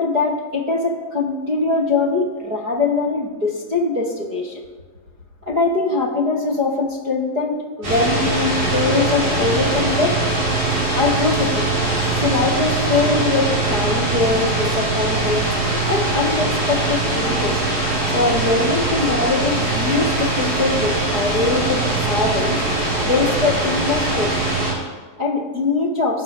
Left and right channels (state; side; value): late; left; 4.8 ms